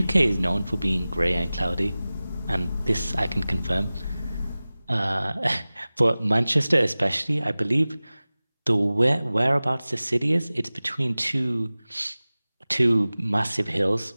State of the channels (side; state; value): both; inverted; correlation -0.98